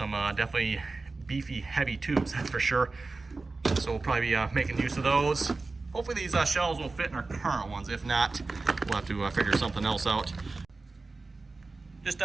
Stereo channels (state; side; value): quieter; left; 3.6 dB